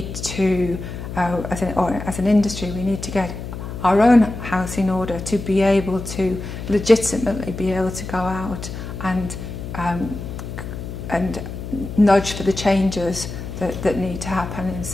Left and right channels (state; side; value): noise; left; hum, 8 dB below the sound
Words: to, as an industry, we need to get our own house in order to be able to legitimately be able to go out and nudge for the changes that need to happen in